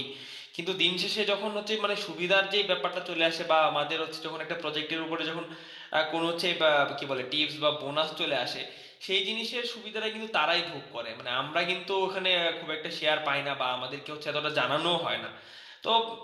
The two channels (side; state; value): both; identical; correlation 1.00